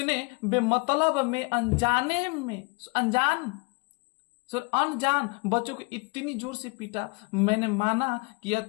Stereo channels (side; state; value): right; quieter; 30.7 dB